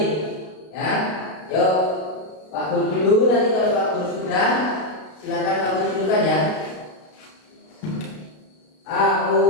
Ya. Yuk. Pak Guru dulu, nanti kalau Pak Guru sudah, silakan kamu tunjukkan ya.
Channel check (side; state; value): right; late; 33 ms